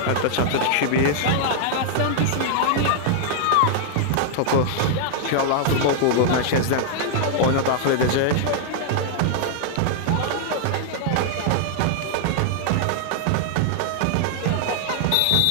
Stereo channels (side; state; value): both; different; correlation -0.01